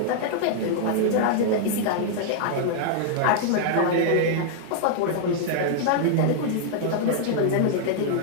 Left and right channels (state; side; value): different; both; correlation -0.01